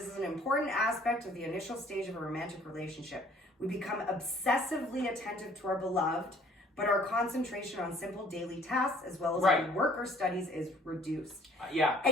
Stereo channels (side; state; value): both; normal; correlation 0.58